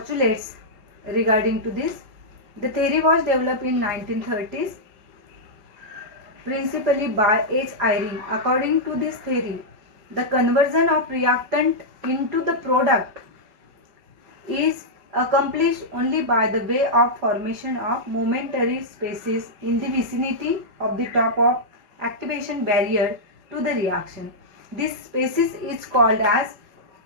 regarding to this. The theory was developed in 1930s principally by H. Eyring. According to this theory, the conversion of reactant into the product is accomplished only by the way of formation of momentary spaces in the vicinity of the top of activation barrier to the reaction. This spaces is called as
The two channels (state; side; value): late; left; 5.3 ms